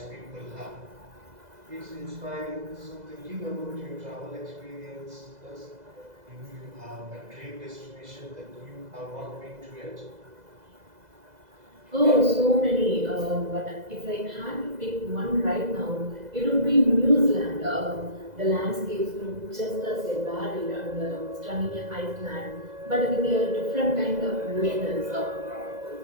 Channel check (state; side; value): late; left; 2.0 ms